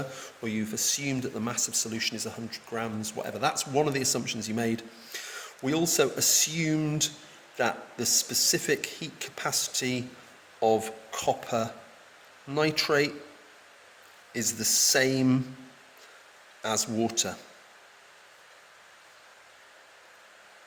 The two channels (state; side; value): identical; both; correlation 1.00